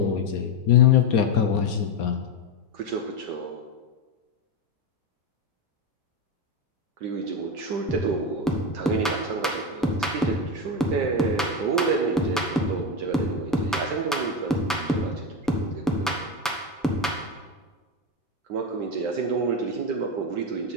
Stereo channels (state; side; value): normal; both; correlation 0.13